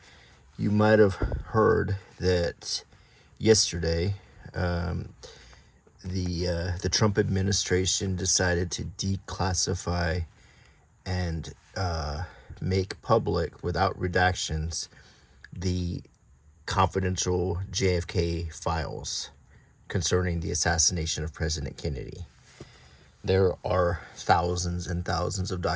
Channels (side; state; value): both; identical; correlation 1.00